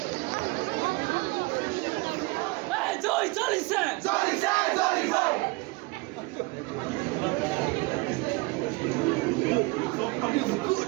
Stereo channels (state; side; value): quieter; left; 25.3 dB